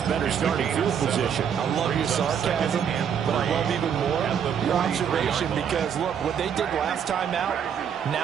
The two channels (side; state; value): left; quieter; 8.0 dB